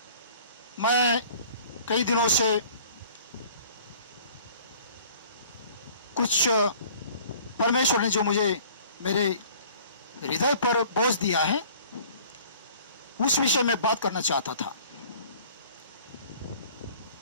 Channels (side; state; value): both; inverted; correlation -0.50